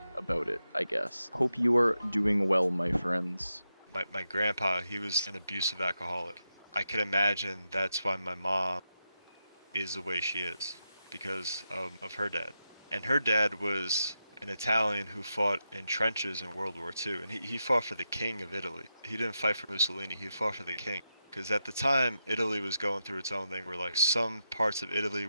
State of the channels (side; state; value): both; inverted; correlation -0.87